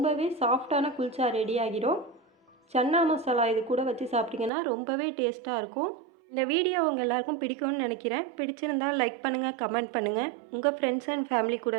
சாஃப்டான குல்ச்சா ரெடி ஆகிடும். சன்னா மசாலா இது கூட வச்சு சாப்பிட்டிங்கன்னா ரொம்பவே டேஸ்ட்டாக இருக்கும். இந்த வீடியோ உங்கள் எல்லாருக்கும் பிடிக்கும்னு நினைக்கிறேன். பிடிச்சிருந்தால் லைக் பண்ணுங்கள், கமெண்ட் பண்ணுங்கள், உங்கள் ஃப்ரெண்ட்ஸ் அண்ட் ஃபேமிலி கூட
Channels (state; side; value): drops out; left; at 4.5 s